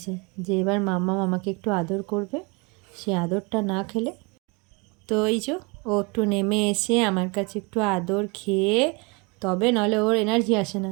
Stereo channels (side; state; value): left; quieter; 29.3 dB